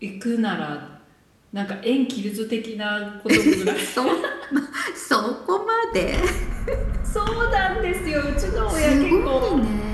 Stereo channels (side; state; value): both; identical; correlation 1.00